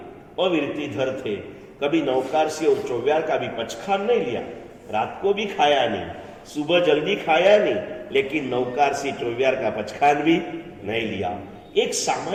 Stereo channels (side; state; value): both; identical; correlation 1.00